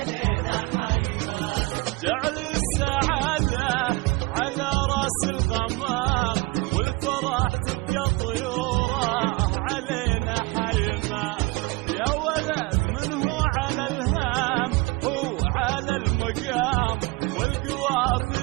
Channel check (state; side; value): quieter; left; 24.3 dB